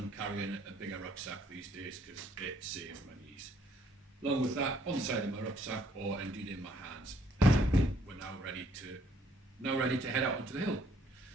carrying a bigger rucksack these days because it saves my knees. Along with that, on the side of my rucksack, or indeed in my hands, we're now ready to head out onto the hill.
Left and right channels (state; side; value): normal; both; correlation 0.65